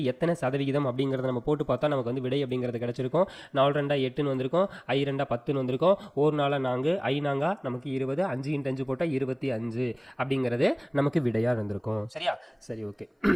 எத்தனை சதவிகிதம் அப்படிங்கிறத நம்ம போட்டு பார்த்தா நமக்கு வந்து விடை அப்படிங்கிறது கிடைச்சிருக்கும். 4 2 8ன்னு வந்திருக்கும், 5 2 10ன்னு வந்திருக்கும், 1 4 4, 5 4 நமக்கு 20, 5 × 5 போட்டால் 25 அப்படிங்கிறது நமக்கு விடையாக இருந்திருக்கும். சரியா, சரி, ஓகே.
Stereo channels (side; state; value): both; identical; correlation 1.00